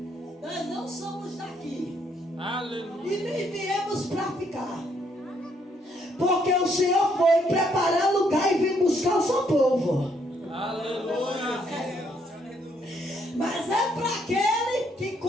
nós não somos daqui. Aleluia. E nem viemos para ficar. Porque o Senhor foi preparar lugar e vir buscar o seu povo. Aleluia. Mas é para aquele que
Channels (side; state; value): both; normal; correlation 0.71